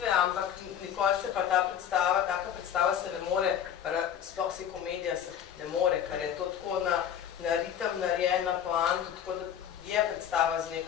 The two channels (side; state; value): right; quieter; 9.3 dB